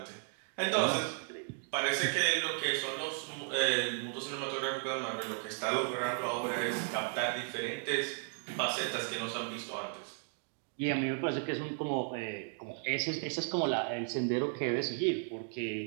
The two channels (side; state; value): left; silent; 54 dB below the other